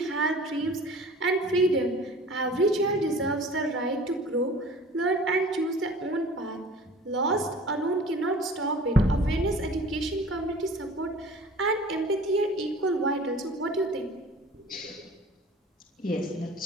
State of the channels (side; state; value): both; normal; correlation 0.44